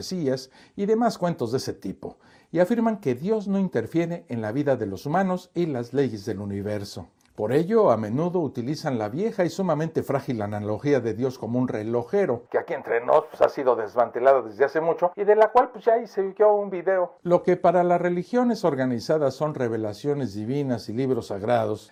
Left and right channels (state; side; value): identical; both; correlation 1.00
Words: y demás cuentos de ese tipo, y afirman que Dios no interfiere en la vida de los humanos y las leyes del universo. Por ello, a menudo utilizan la vieja y sumamente frágil analogía de Dios como un relojero, que aquí entre nos ha sido desmantelada desde hace mucho y de la cual ya hice yo un video. Lo que para las religiones organizadas son revelaciones divinas y libros sagrados,